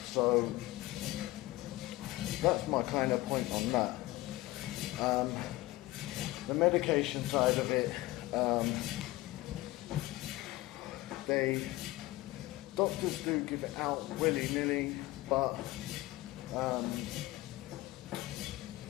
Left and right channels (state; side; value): quieter; right; 18.6 dB